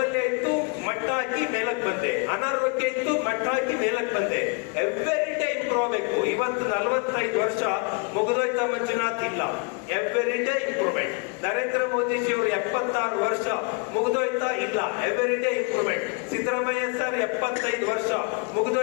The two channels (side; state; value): right; quieter; 33.6 dB